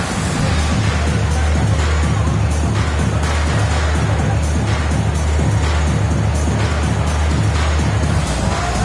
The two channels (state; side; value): identical; both; correlation 1.00